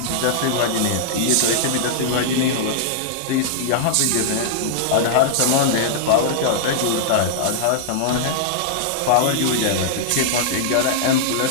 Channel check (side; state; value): both; different; correlation -0.01